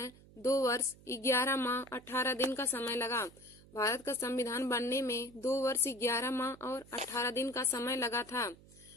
2 वर्ष 11 माह 18 दिन का समय लगा। भारत का संविधान बनने में 2 वर्ष 11 माह और 18 दिन का समय लगा था।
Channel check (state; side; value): noise; right; hum, 23 dB below the sound